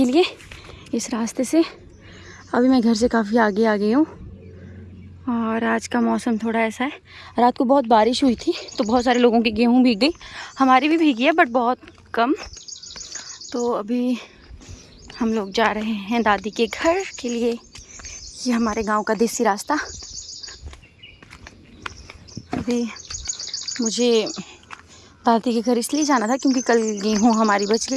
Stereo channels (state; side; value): identical; both; correlation 1.00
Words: लिए इस रास्ते से। अभी मैं घर से काफ़ी आगे आ गई हूँ और आज का मौसम थोड़ा ऐसा है। रात को बहुत बारिश हुई थी तो बहुत सारे लोगों की गेहूँ भीग गई, हमारी भी भीगी है बट बहुत कम। तो अभी हम लोग जा रहे हैं दादी के घर के लिए। ये हमारे गांव का देसी रास्ता। अभी मुझे दादी के घर इसलिए जाना था क्योंकि कल गेहूँ हमारी बच